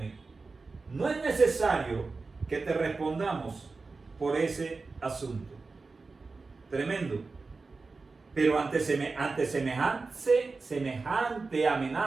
No es necesario que te respondamos por ese asunto. Tremendo. Pero ante semejante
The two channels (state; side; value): quieter; left; 4.0 dB